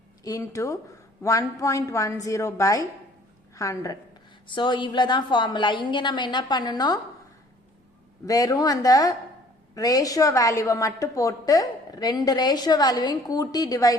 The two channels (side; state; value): both; normal; correlation 0.55